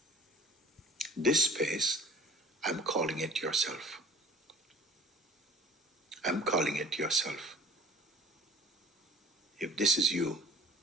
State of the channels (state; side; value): normal; both; correlation 0.45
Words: This space, I'm calling it yourself. I'm calling it yourself. If this is you,